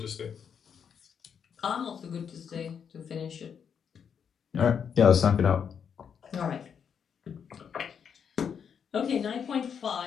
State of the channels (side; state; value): right; quieter; 7.3 dB